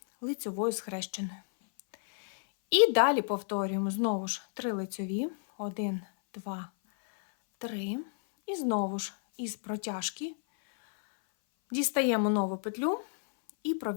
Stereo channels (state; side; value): silent; right; 57 dB below the other